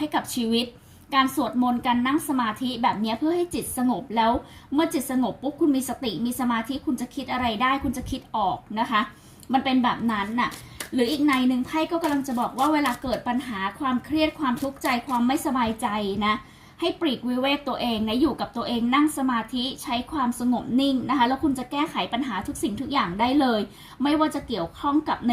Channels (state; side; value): identical; both; correlation 1.00